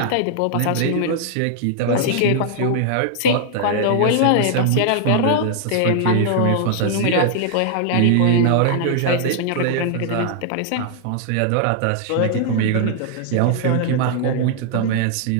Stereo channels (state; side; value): different; both; correlation 0.00